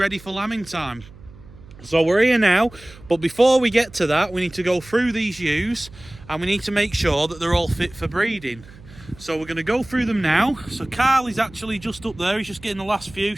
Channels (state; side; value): noise; right; hum, 21 dB below the sound